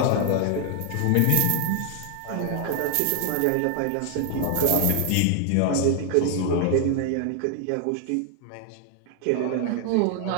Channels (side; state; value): both; different; correlation 0.00